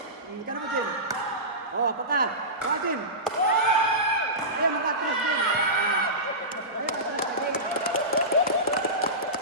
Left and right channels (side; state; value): both; normal; correlation -0.20